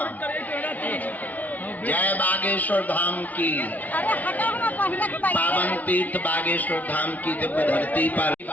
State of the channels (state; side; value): late; right; 0.076 ms